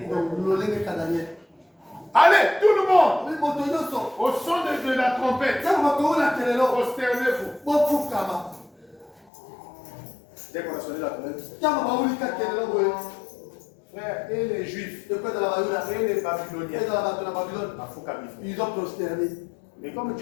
Allez, tout le monde, au son de la trompette, prosternez-vous. Dès qu'on a sonné la trompette, frère, et les Juifs, et les Babyloniens, ils ont prosterné. mais comme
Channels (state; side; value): drops out; right; at 9.3 s